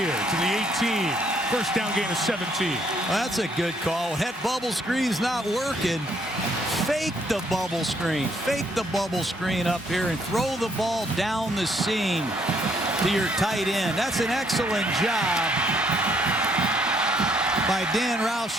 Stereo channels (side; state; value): both; normal; correlation 0.68